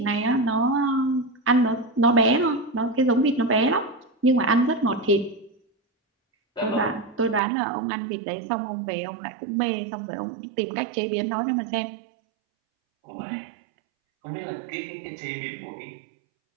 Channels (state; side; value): drops out; left; at 7.4 s